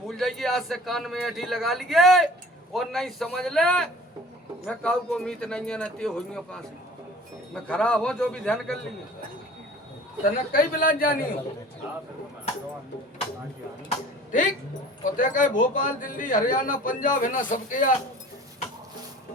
जाएगी। आज से कान में ऐठी लगा लिए और नहीं समझ ले मैं काऊ को मीत नहीं है, नती हुई पास मैं खराब हो जो भी ध्यान कर लिए तने कई बिला जानी हो। ठीक, और देखा भोपाल दिल्ली हरियाणा पंजाब है ना सबके यार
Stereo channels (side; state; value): both; normal; correlation 0.45